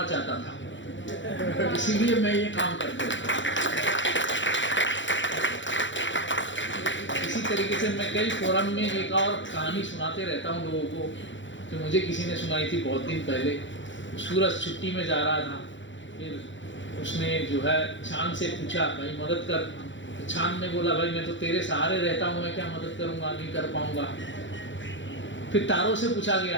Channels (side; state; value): right; late; 0.54 ms